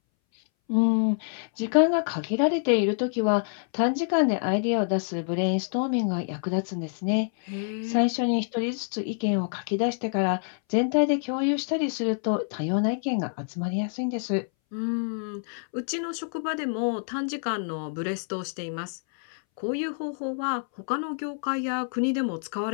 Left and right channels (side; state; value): right; silent; 60 dB below the other